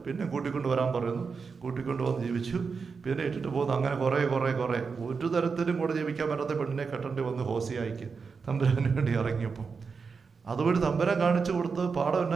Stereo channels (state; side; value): quieter; left; 5.2 dB